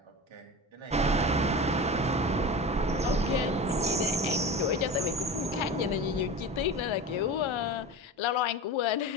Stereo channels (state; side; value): normal; both; correlation 0.29